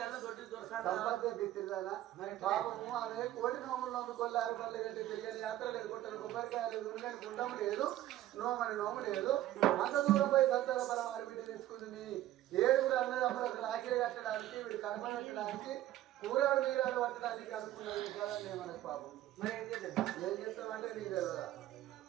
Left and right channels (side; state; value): left; quieter; 13.9 dB